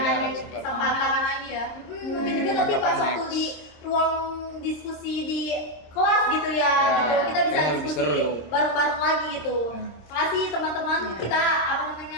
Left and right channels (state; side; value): late; right; 26 ms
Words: kesempatan lagi ya. Mungkin juga nanti pas waktu di ruang diskusi di kelas gitu ya, gitu. Kita bisa diskusi bareng-bareng lagi gitu. Makasih teman-teman, kita